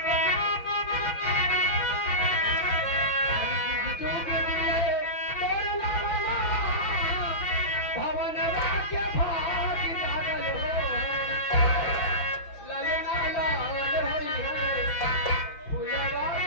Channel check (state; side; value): late; right; 5.8 ms